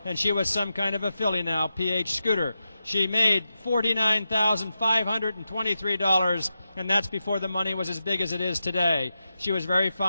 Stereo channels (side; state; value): both; inverted; correlation -0.88